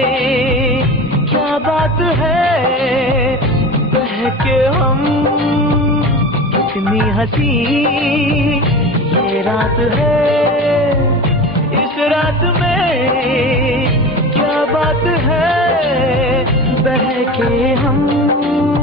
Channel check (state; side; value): normal; both; correlation 0.31